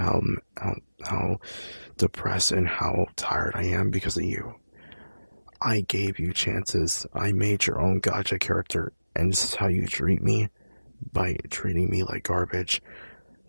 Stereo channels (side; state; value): both; inverted; correlation -0.99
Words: depressed and how tired I am because of you. I gave you chances. I made your own gacha character, and this is how you treat me by treating me like garbage.